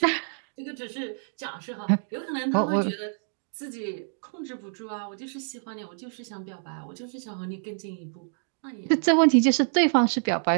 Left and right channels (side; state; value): left; silent; digital silence